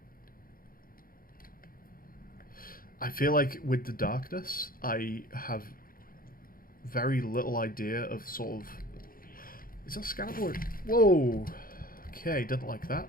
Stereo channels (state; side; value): late; right; 0.42 ms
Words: I feel like with the darkness, I have very little idea of sort of... Is that scannable? Whoa! Okay, didn't like